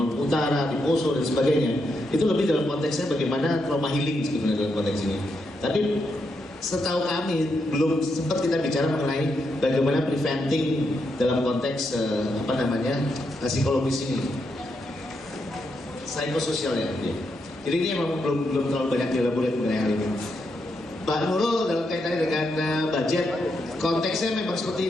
Utara, di Poso dan sebagainya. Itu lebih dalam konteksnya bagaimana trauma healing sebenarnya dalam konteks ini. Tapi setahu kami belum sempat kita bicara mengenai bagaimana preventing dalam konteks psikologis ini, psikososial ya. Jadi ini memang belum terlalu banyak dielaborasi mengenai hal ini. Pak Nurul dalam kaitannya dengan budget, konteksnya memang seperti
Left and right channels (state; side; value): normal; both; correlation 0.82